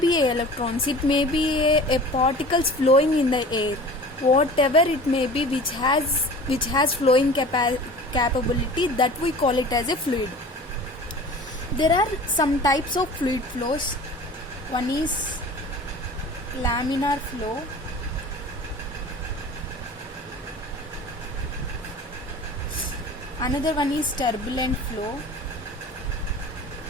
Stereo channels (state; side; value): normal; both; correlation 0.40